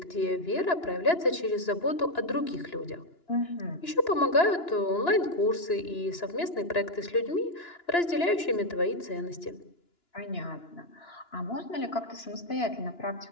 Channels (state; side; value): late; right; 2.9 ms